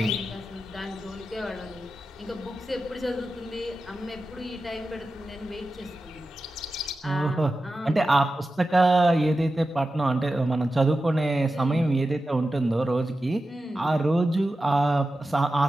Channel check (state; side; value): normal; both; correlation 0.92